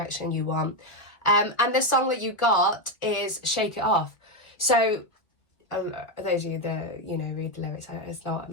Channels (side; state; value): right; late; 1.8 ms